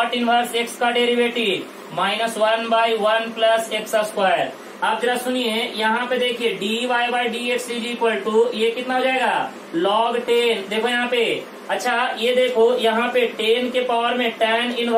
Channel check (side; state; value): both; identical; correlation 1.00